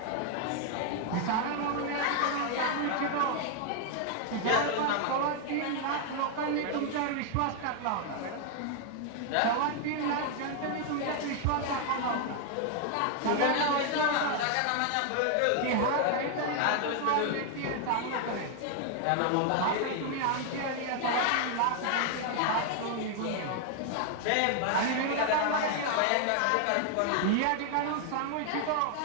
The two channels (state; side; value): different; both; correlation 0.00